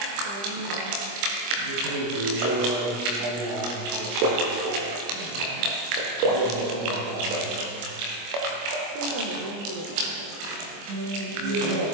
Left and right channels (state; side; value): late; left; 25 ms